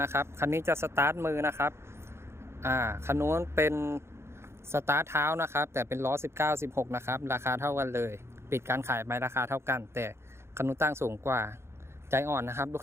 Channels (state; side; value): late; left; 0.12 ms